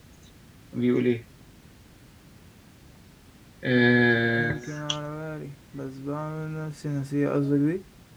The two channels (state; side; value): identical; both; correlation 1.00